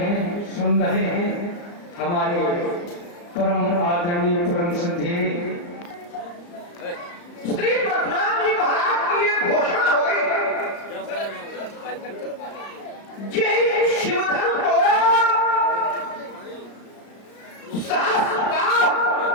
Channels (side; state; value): right; late; 34 ms